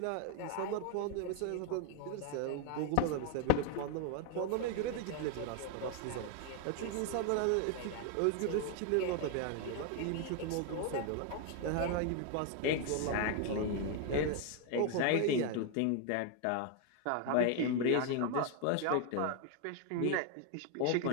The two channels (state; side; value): different; both; correlation 0.00